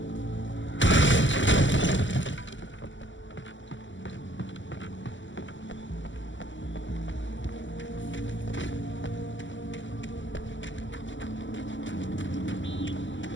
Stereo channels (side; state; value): right; late; 0.54 ms